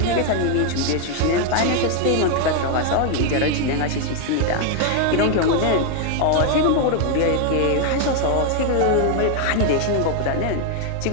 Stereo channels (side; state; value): both; different; correlation 0.00